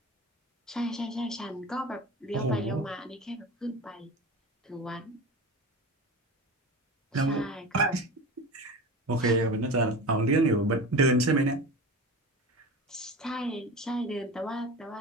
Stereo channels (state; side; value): normal; both; correlation 0.31